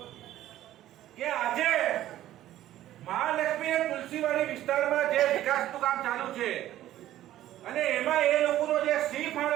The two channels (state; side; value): quieter; left; 13.4 dB